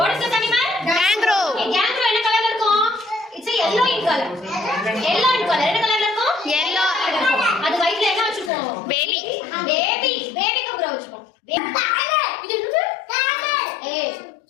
is this animal? Kangaroo. Okay, kangaroo என்ன கலர்ல இருக்கும்? It's a yellow in color. Yellow in color. என்ன கலர்ல இருக்கும்? Yellow. அது வயித்துல என்ன வச்சிருக்கோம்? Baby. Baby. Baby kangaroo வச்சிருக்கோம். இது என்னது? Camel. Hey,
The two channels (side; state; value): right; drops out; at 8.5 s